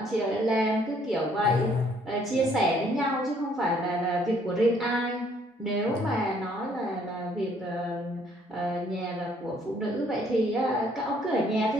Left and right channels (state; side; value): normal; both; correlation 0.64